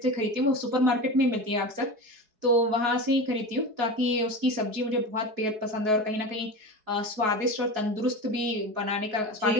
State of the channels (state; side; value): late; left; 4.7 ms